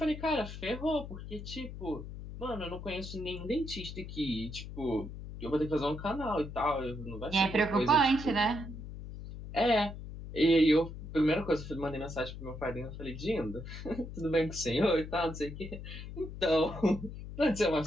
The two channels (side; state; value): left; noise; hum, 10 dB below the sound